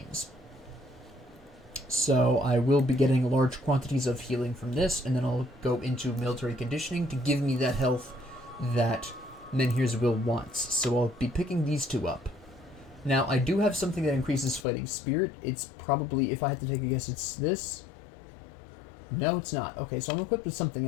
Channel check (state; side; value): drops out; right; at 14.7 s